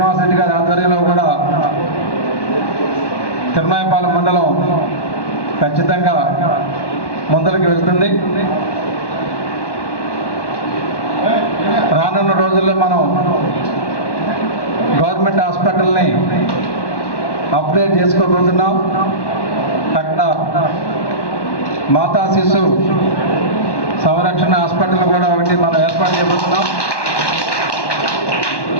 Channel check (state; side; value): late; right; 1.1 ms